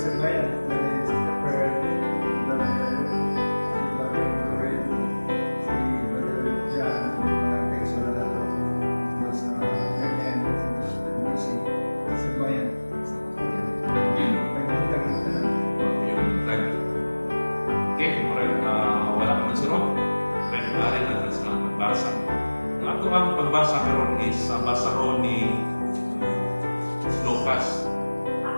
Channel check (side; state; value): both; inverted; correlation -1.00